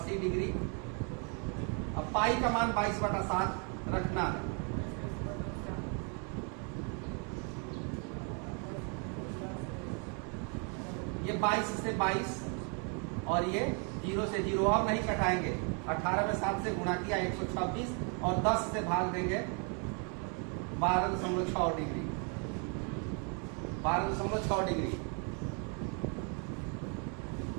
डिग्री। अब पाई का मान 22 बटा 7 रखना है, ये 22 से 22, और ये 0 से 0, अब नहीं कटाएंगे, 18 में 7 से गुणा किया 126, और 10 से भाग देंगे 12.6 डिग्री, 12.6 डिग्री।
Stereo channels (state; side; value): quieter; left; 37.9 dB